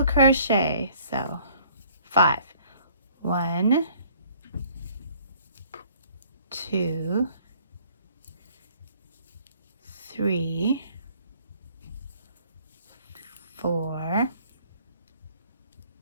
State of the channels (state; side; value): inverted; both; correlation -0.57